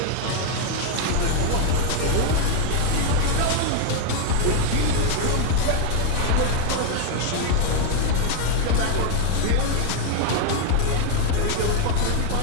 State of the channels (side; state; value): both; different; correlation 0.01